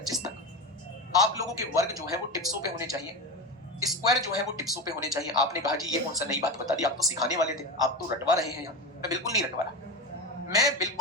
तक आप लोगों के वर्ग जो है वो टिप्सों पे होने चाहिए, स्क्वायर जो है वो टिप्सों पे होने चाहिए। आपने कहा जी ये कौन सा नई बात बता दी, आप तो सिखाने वाले थे, आप तो रटवा रहे हैं यहाँ। मैं बिल्कुल नहीं रटवा रहा, मैं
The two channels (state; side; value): normal; both; correlation 0.20